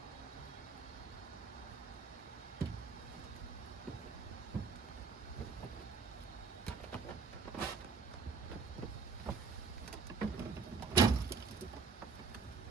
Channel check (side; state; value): left; quieter; 4.9 dB